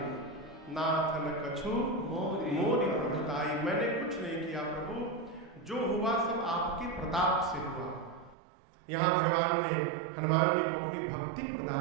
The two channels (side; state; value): left; drops out; at 8.3 s